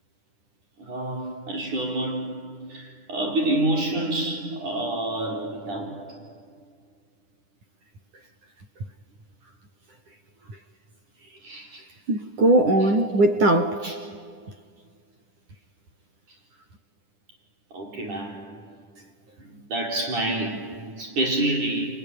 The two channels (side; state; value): left; late; 10 ms